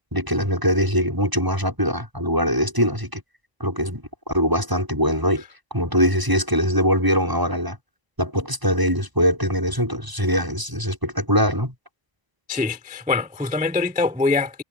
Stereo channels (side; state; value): left; late; 1.0 ms